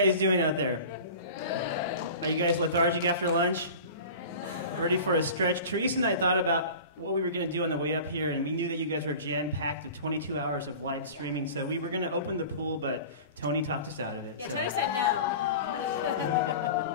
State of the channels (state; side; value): inverted; both; correlation -0.37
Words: doing out there? Are you guys lethargic after lunch? Ready for a stretch? Theresa and I thought about what we were going to do on the way up here, and we knew that you guys were jam-packed with 22 hours of live streaming, so we were going to open the pool, but Tony talked us out of it. Yeah, so. Tony said no.